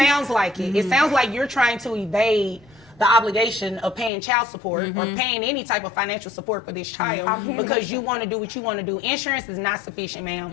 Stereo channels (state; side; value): drops out; right; at 4.1 s